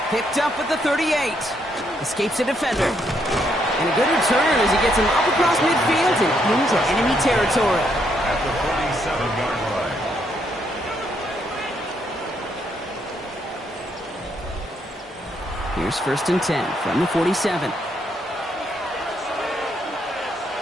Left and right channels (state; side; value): normal; both; correlation 0.74